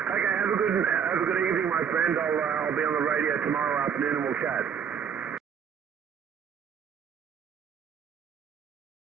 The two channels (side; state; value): left; quieter; 7.6 dB